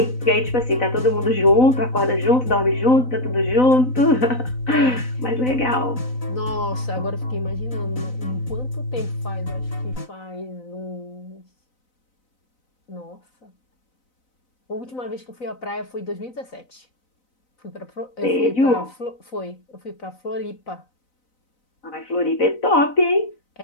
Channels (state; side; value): late; right; 4.0 ms